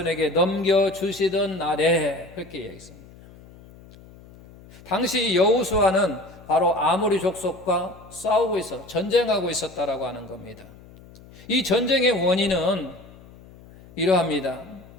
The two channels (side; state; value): left; noise; hum, 22 dB below the sound